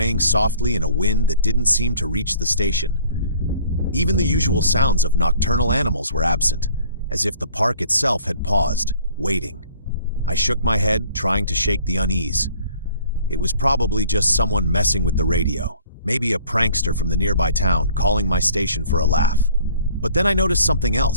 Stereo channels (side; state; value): both; inverted; correlation -0.54